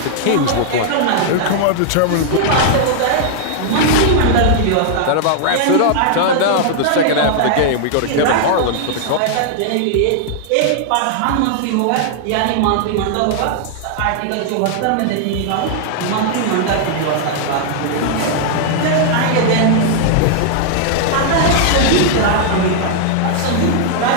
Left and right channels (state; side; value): different; both; correlation -0.01